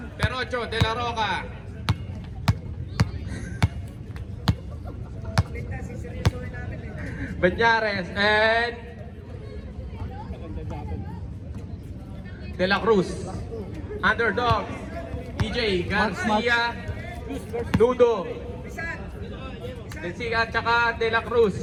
Perocho, De La Roca. Banyares and De La Cruz. Underdog, EJ, Garcia, Nudo, Densiga, tsaka De La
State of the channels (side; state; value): both; identical; correlation 1.00